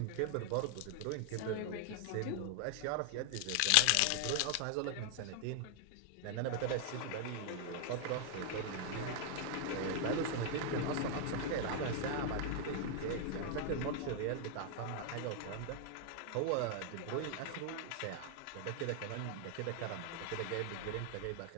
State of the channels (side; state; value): both; different; correlation 0.00